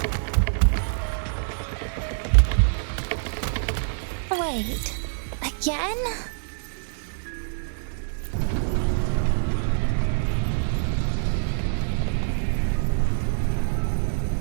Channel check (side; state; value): left; silent; digital silence